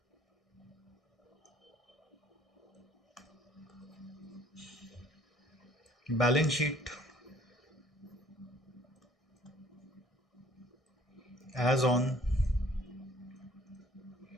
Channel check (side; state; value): both; normal; correlation 0.58